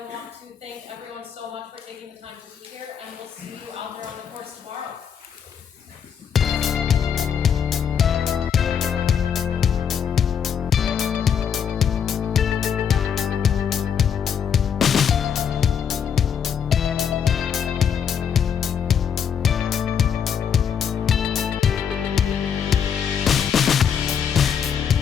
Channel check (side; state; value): right; quieter; 7.7 dB